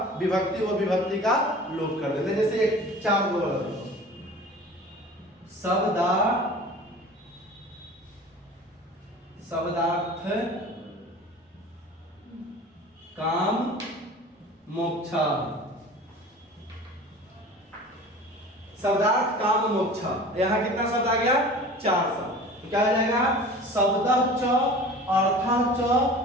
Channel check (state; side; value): normal; both; correlation 0.41